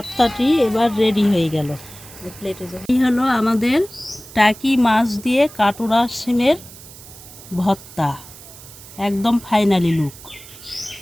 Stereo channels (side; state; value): right; noise; hiss, 18 dB below the sound